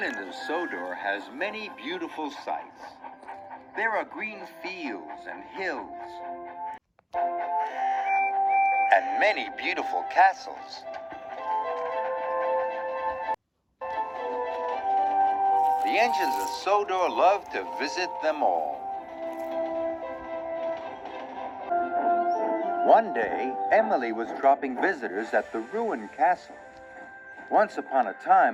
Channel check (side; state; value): both; identical; correlation 1.00